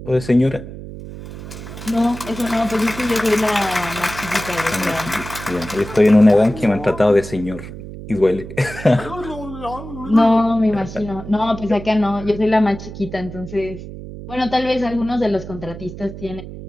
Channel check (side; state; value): right; noise; hum, 12 dB below the sound